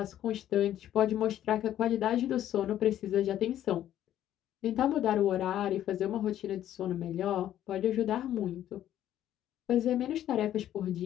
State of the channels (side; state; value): right; quieter; 11.8 dB